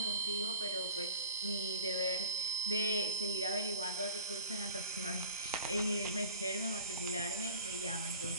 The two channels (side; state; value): both; inverted; correlation -0.39